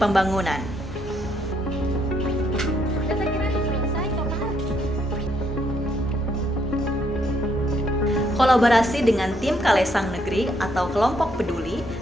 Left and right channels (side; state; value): both; normal; correlation 0.72